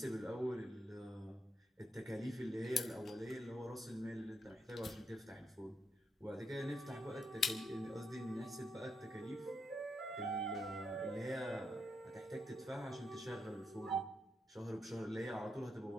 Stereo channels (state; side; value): normal; both; correlation 0.81